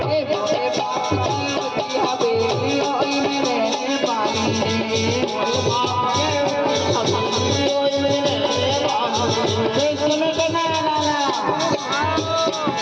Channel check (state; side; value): identical; both; correlation 1.00